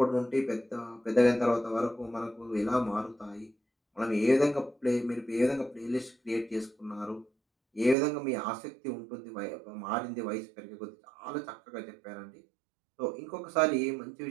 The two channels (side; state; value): left; drops out; at 8.0 s